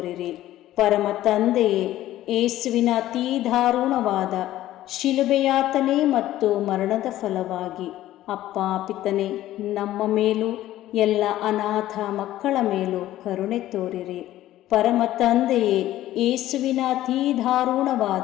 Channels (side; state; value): right; quieter; 14.2 dB